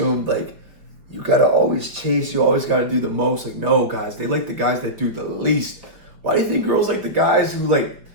like you gotta always chase, you always gotta do the most. Like, no, guys, they like the guys that do the least. Why do you think girls like the guys who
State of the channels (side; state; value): left; late; 4.9 ms